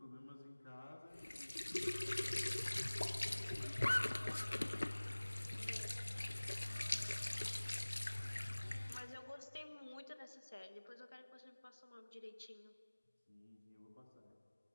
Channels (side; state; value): both; inverted; correlation -1.00